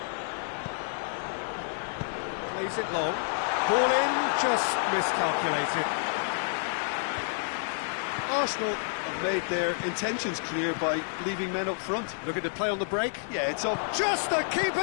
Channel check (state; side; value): silent; right; digital silence